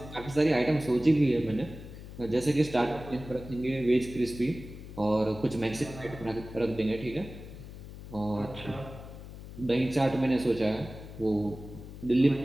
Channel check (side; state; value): left; noise; hum, 13 dB below the sound